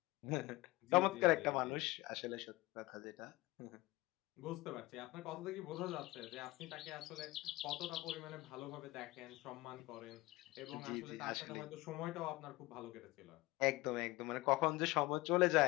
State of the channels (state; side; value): quieter; right; 20.7 dB